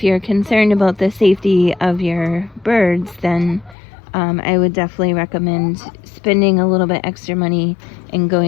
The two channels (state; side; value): drops out; right; at 3.8 s